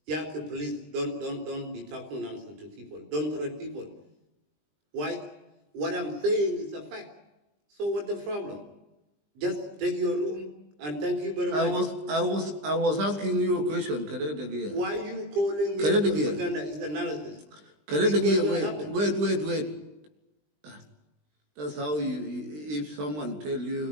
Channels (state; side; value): late; left; 20 ms